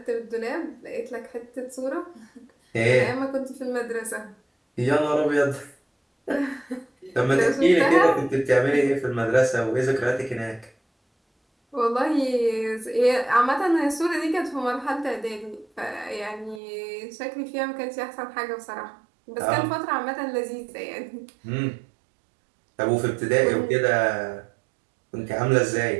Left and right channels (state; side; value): drops out; left; at 16.6 s